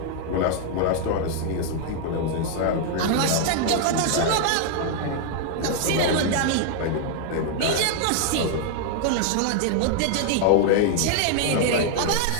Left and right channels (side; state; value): both; different; correlation 0.00